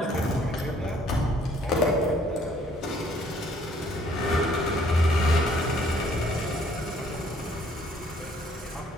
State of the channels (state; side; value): normal; both; correlation 0.62